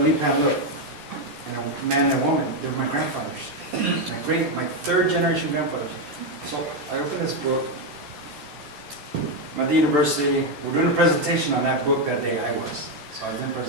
looked, and a man and a woman. They were my grandfathers, my third generation grandfathers. So I opened this book. I'm at the university. We're doing a presentation on that book that day. I was. So I was doing a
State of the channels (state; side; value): late; left; 14 ms